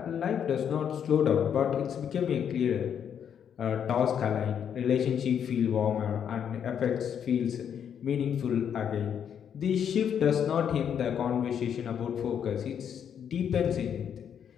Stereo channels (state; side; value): quieter; right; 8.4 dB